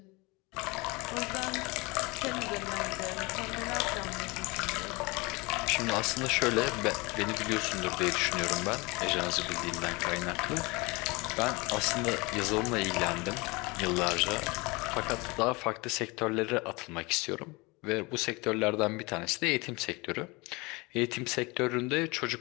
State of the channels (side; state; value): right; quieter; 25.3 dB